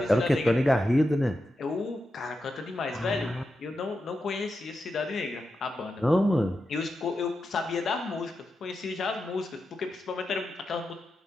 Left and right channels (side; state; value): both; normal; correlation 0.89